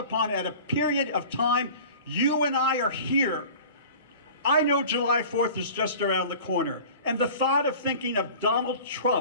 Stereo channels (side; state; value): both; inverted; correlation -0.41